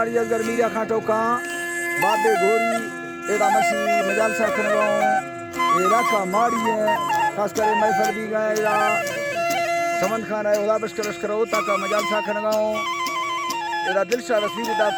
अगर मीरा खाटो का बाबे गोरी एदा मसी मजाल सा खनगो एरा का मारी है खास करे महफल भी गए एदा समन खान है उदा बशकर लश्कर होता का मजाल सा खनगो एदा दिलशा रसीद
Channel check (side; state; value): both; identical; correlation 1.00